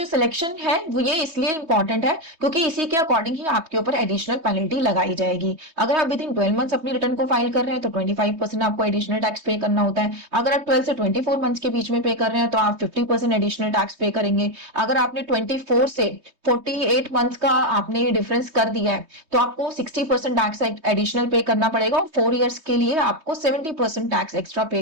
सिलेक्शन है वो ये इसलिए इंपॉर्टेंट है क्योंकि इसी के अकॉर्डिंग ही आपके ऊपर एडिशनल पेनल्टी लगाई जाएगी। अगर आप विद इन 12 मंथ्स अपनी रिटर्न को फाइल कर रहे हैं तो 25% आपको एडिशनल टैक्स पे करना होता है। अगर आप 12 से 24 मंथ्स के बीच में पे कर रहे हैं तो आप 50% एडिशनल टैक्स पे करेंगे। अगर आपने 24 से 48 मंथ्स का आपने डिफरेंस कर दिया है तो आपको 60% टैक्स एडिशनल पे करना पड़ेगा और 4 ईयर्स के लिए आपको 70% टैक्स एक्स्ट्रा पे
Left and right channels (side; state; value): left; late; 3.2 ms